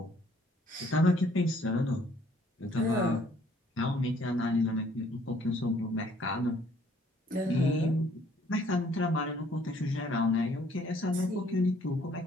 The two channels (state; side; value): normal; both; correlation 0.62